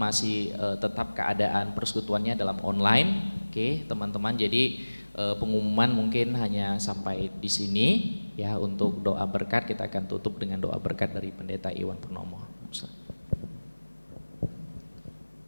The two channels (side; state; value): both; inverted; correlation -1.00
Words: tetap keadaan persekutuannya dalam online. Oke teman-teman, jadi pengumuman mungkin hanya sampai di sini. Ya, untuk doa berkat kita akan tutup dengan doa berkat dari Pendeta Iwan Purnomo.